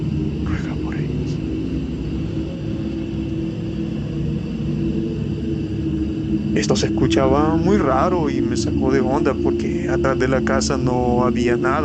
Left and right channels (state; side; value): identical; both; correlation 1.00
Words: ruega por ellos. Esto se escuchaba muy raro y me sacó de onda porque atrás de la casa no había